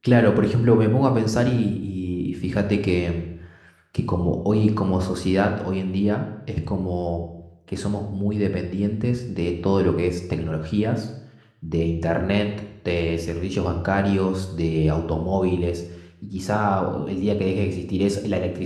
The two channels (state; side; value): identical; both; correlation 1.00